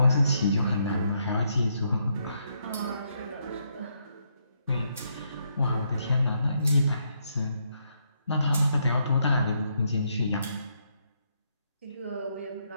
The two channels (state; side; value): inverted; both; correlation -0.76